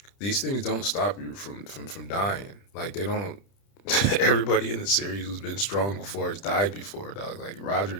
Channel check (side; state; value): right; late; 30 ms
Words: These things don't stop you from dying. Like they don't. Everybody in the series who's been strong before has died before, dog. Like Roger